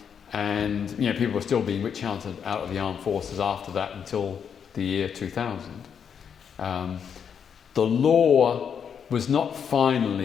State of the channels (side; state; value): right; quieter; 7.4 dB